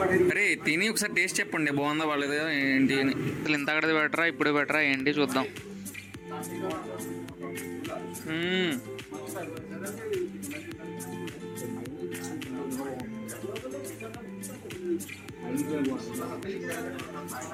అరే తిని ఒకసారి టేస్ట్ చెప్పండి, బాగుందా బాగాలేదు ఏంటి అని. అసలు ఇంత అక్కడది బెటరా ఇప్పుడు బెటరా ఏంటి చూద్దాం.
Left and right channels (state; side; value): identical; both; correlation 1.00